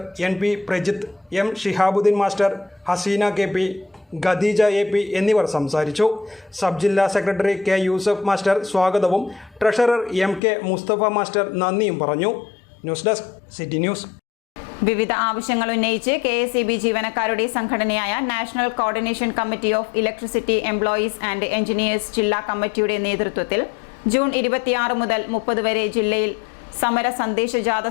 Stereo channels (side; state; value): right; drops out; at 10.4 s